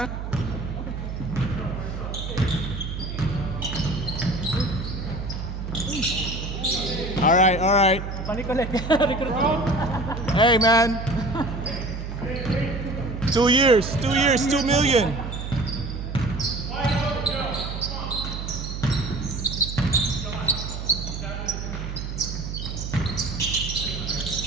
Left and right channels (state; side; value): noise; right; hum, 6 dB below the sound